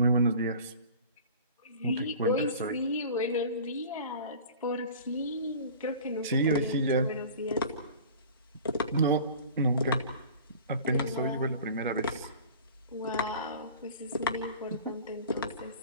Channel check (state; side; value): inverted; both; correlation -0.41